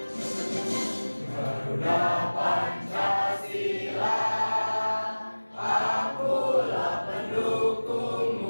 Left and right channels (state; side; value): inverted; both; correlation -1.00